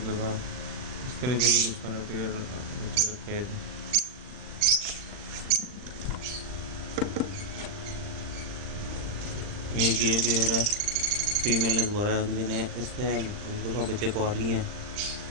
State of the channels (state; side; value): late; left; 39 ms